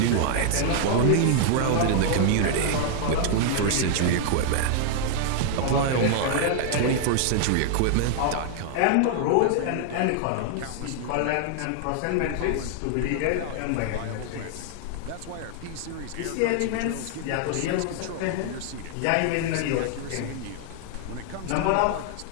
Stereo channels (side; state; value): both; different; correlation 0.00